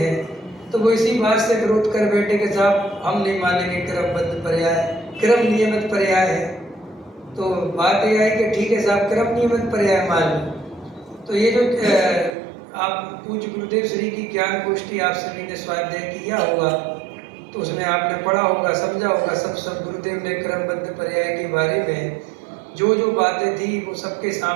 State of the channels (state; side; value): drops out; left; at 12.4 s